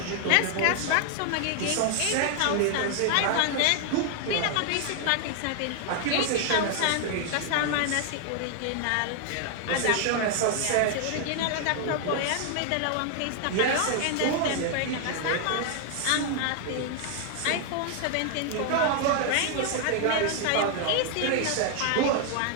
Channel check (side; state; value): both; different; correlation 0.00